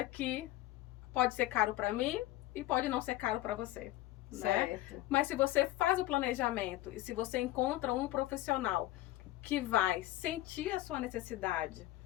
que pode ser caro para mim e pode não ser caro para você. Certo. Né? Mas se você faz o planejamento e se você encontra um profissional que vai sentir a sua necessidade,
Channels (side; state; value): right; quieter; 16.0 dB